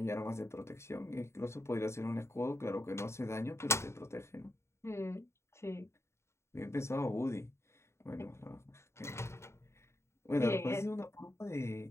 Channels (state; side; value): late; right; 0.13 ms